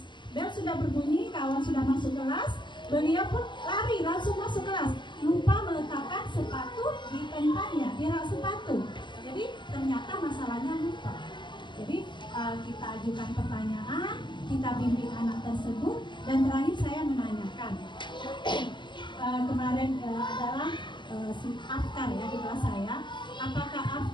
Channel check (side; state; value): right; late; 0.22 ms